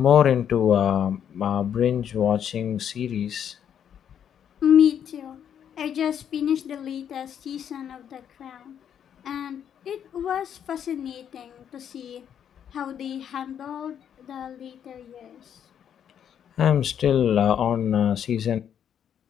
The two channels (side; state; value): right; quieter; 8.9 dB